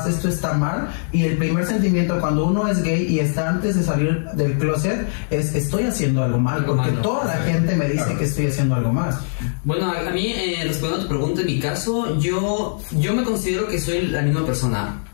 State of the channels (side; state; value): right; silent; 61 dB below the other